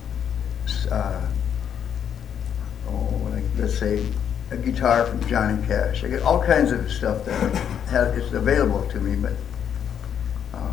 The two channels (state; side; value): quieter; right; 8.6 dB